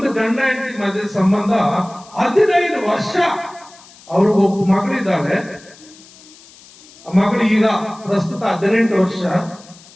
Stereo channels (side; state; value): left; noise; hiss, 23 dB below the sound